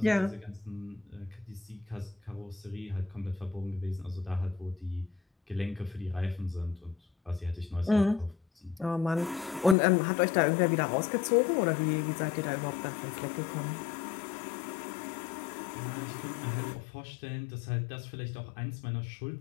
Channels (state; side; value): drops out; right; at 9.8 s